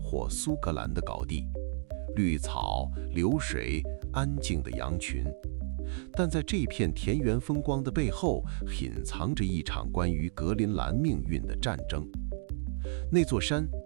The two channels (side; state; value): left; silent; digital silence